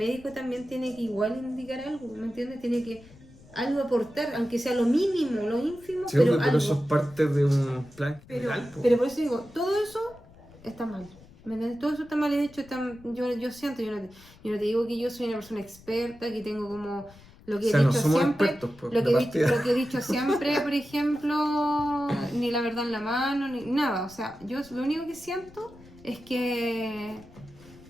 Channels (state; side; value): noise; left; rumble, 23 dB below the sound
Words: también tiene que igual indicar algo, ¿me entiendes? Tiene que algo aportar, aunque sea lo mínimo, lo ínfimo, Sí, pero pero algo. eso es parte de un plan general. po. Pero por eso digo, todo eso está mal. ¿Me entiendes? Todo eso está mal hecho. Yo siento, yo no te digo que yo soy una persona experta, que tengo como lo que O sea, he no dicho somos siempre. expertos, pues, Lo de que, partida. lo que he dicho siempre, por ejemplo, ni la verdad en la mano, ni nada. O sea, yo lo único que siento es que